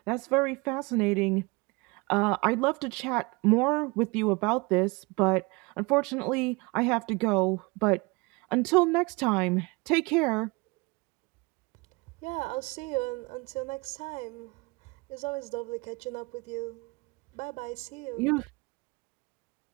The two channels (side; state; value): left; quieter; 26.5 dB